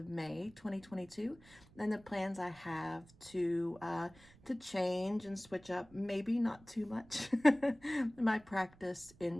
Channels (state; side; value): noise; right; rumble, 25 dB below the sound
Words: May 2022 and the plans I have to change and switch up, maybe not too much, my practice